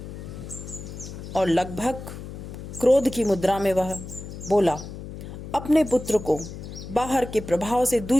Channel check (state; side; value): noise; left; hum, 11 dB below the sound